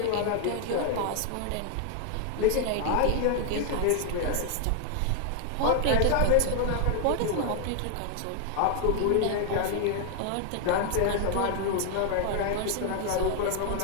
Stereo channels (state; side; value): different; both; correlation 0.00